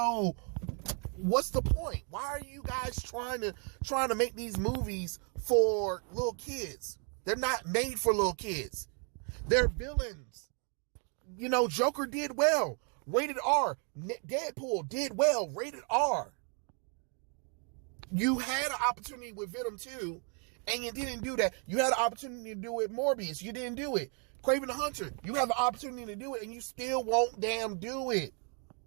what's the point? Why are you guys trying to make these movies for little kids? They're not made for little kids. They're villains. You know, Joker did well. Rated R. Deadpool did well. Rated R. You had an opportunity with Venom 2, and you didn't do that. You had an opportunity to do it with Morbius. You didn't do it. Kraven the Hunter. You have an opportunity to do it, and you still won't damn do it.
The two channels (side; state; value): left; quieter; 39.7 dB